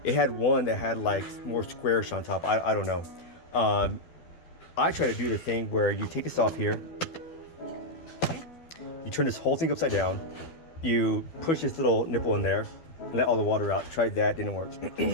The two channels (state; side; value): late; right; 12 ms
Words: It had one that had like more squarish on top. I don't know. I try to do the thing where you take this off here, you turn this whole thing upside down, you push this little nipple in there and let all the water out. Tried that, didn't work.